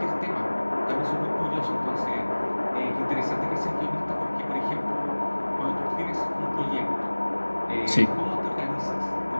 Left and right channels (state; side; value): inverted; both; correlation -1.00